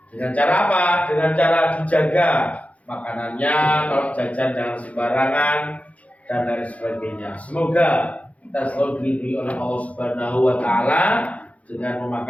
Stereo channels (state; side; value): late; right; 0.067 ms